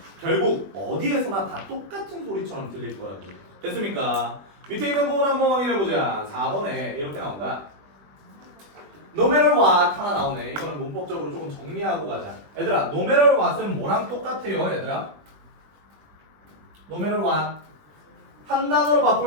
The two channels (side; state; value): left; late; 20 ms